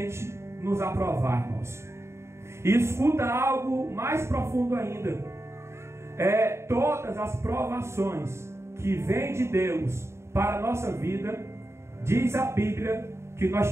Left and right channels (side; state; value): left; late; 0.13 ms